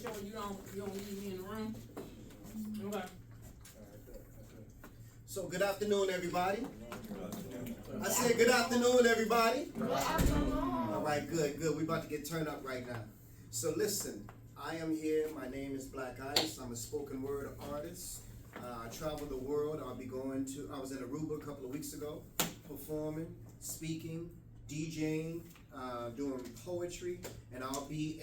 you don't leave me in the room. Okay. So good afternoon, everybody. I said good afternoon, everybody. Good afternoon. All right, good. We're about to get turned up right now. So listen, I am here. My name is BLAQ ICE. I'm a spoken word artist. I travel the world. I was in Aruba a couple of weeks ago, performing, speaking, DJing, doing poetry, and I'll be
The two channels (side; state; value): both; identical; correlation 1.00